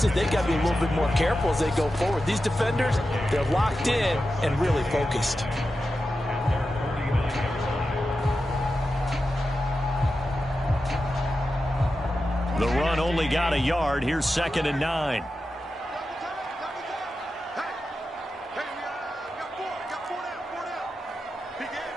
they got to be a little bit more careful as they go forward. These defenders, they're locked in and really focused. The run only got a yard. Here's 2nd and 9.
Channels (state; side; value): normal; both; correlation 0.91